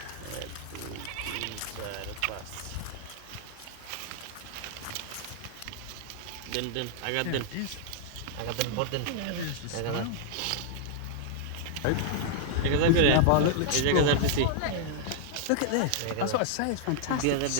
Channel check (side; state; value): both; different; correlation -0.01